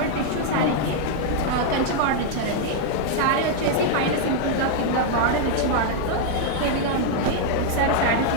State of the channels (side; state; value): both; different; correlation -0.01